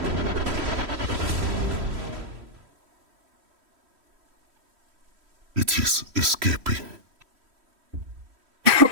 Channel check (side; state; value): left; late; 3.1 ms